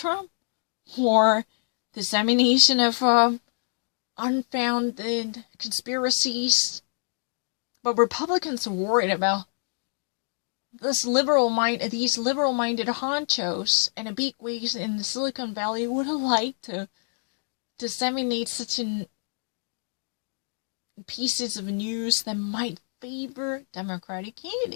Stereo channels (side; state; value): right; silent; digital silence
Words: or dissemination of unfounded conspiracies. But Republicans are worried about these liberal-minded honchos and the bigwigs in the Silicon Valley would like to disseminate such pieces of news that might favor Democratic